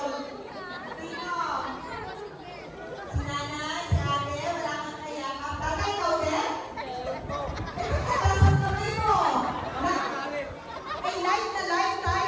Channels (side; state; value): both; identical; correlation 1.00